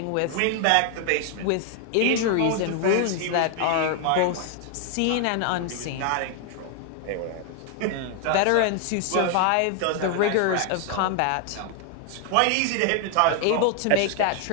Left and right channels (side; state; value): both; different; correlation 0.00